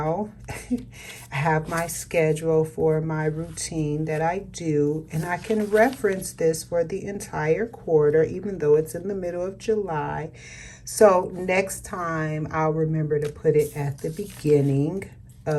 I have my schedule for my routine that I do, and I can reference this for the entire quarter, even though it's in the middle of July. So next time I'll remember to put it at the beginning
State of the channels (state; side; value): identical; both; correlation 1.00